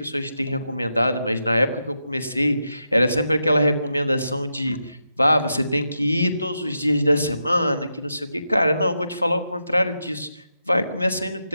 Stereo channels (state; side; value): inverted; both; correlation -0.85